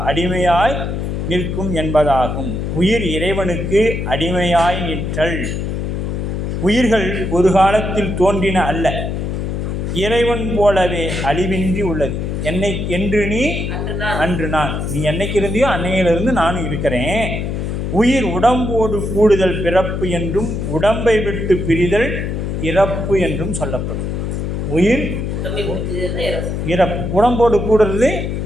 என்பதாகும். உயிர் இறைவனுக்கு அடிமையாய் நிற்றல். உயிர்கள் ஒரு காலத்தில் தோன்றின அல்ல, இறைவன் போலவே அழிவின்றி உள்ளது. என்று நீ அன்று நான், நீ என்னைக்கு இருந்தியோ அன்னையிலிருந்து நானும் இருக்கிறேன். உயிர் உடம்போடு கூடுதல் பிறப்பு என்றும் உடம்பை விட்டு பிரிதல் இறப்பு என்றும் சொல்லப்படும். உயிர் இறப்பு, உடம்போடு கூடுறது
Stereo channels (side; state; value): left; noise; hum, 2 dB below the sound